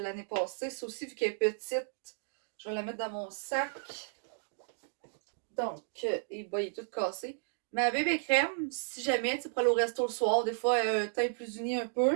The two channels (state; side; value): silent; left; digital silence